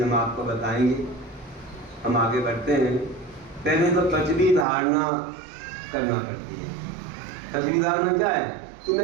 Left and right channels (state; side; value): drops out; left; at 4.7 s